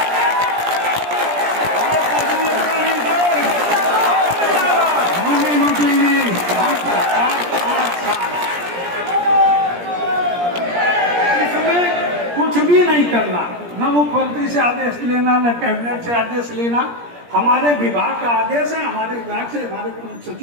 भी नहीं करना, न मुख्यमंत्री से आदेश लेना, न कैबिनेट से आदेश लेना। हमारे विभाग का आदेश है, हमारे विभाग से हमारे प्रमुख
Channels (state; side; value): late; left; 17 ms